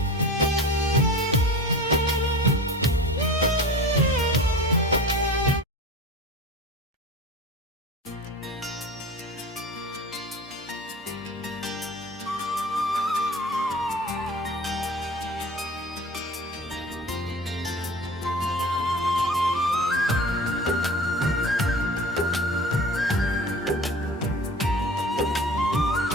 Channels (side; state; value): both; normal; correlation 0.37